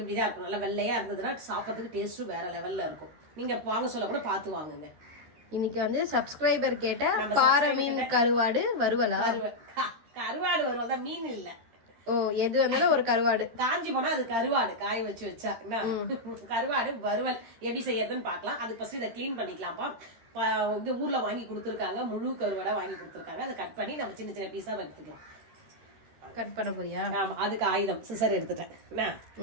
இருக்கும். நல்லா வெள்ளையா இருந்ததுன்னா சாப்பிட்றதுக்கு டேஸ்ட்டும் வேற லெவல்ல இருக்கும். நீங்க வாங்க சொல்ல கூட பார்த்து வாங்குங்க. இன்னைக்கு வந்து சப்ஸ்கிரைபர் கேட்ட பாறை மீன் கருவாடு வறுவலா? கருவாடு வறுவல் தான், மீன் இல்ல. ஓ, எது வந்தாலும் ஒரு கருவாடு. காஞ்சி போனா அது கருவாடு, காய வச்சு வச்சா கருவாடு வறுவல் எப்படி செய்யறதுன்னு பாக்கலாம். அதுக்கு ஃபர்ஸ்ட் இதை கிளீன் பண்ணிக்கலாம்ப்பா. இது ஊர்ல வாங்கி கொடுத்துருக்காங்க, முழு கருவாடா வாங்கி கொடுத்துருக்காங்க. அதை கட் பண்ணி நம்ம சின்ன சின்ன பீஸா எடுத்துக்கலாம். கட் பண்ண போறியா? ஆமா, அதுக்கு ஆயுதம் சிசர் எடுத்துட்டேன்.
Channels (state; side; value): late; left; 13 ms